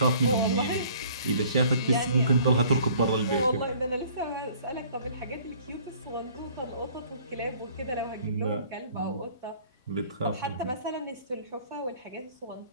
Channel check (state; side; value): inverted; both; correlation -0.54